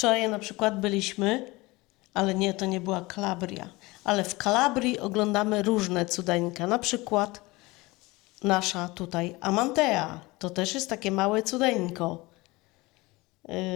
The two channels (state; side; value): quieter; right; 22.2 dB